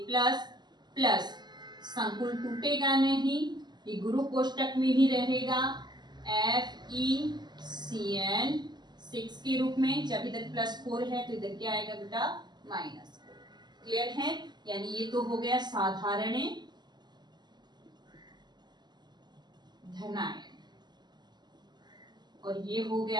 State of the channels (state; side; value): late; left; 0.21 ms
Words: प्लस संकुल टूटेगा नहीं, ये गुरु कोष्टक में ही रहेगा FeCN6 के रूप में। जब इधर +4 है तो इधर क्या आएगा बेटा? -4। क्लियर है? यानी ये तो हो गया साधारण धनायन, और ये हो